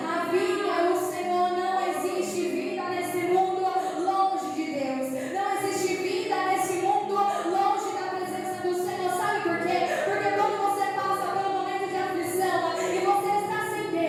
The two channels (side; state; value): both; identical; correlation 1.00